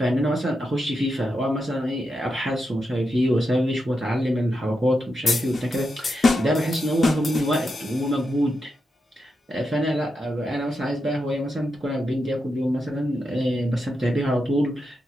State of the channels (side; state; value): both; normal; correlation 0.86